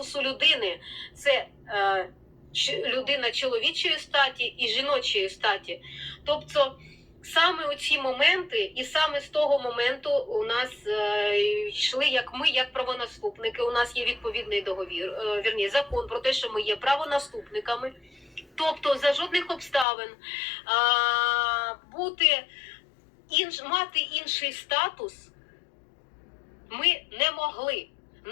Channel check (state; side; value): drops out; right; at 19.9 s